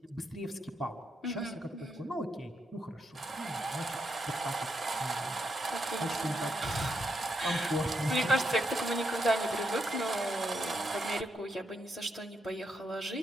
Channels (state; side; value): normal; both; correlation 0.81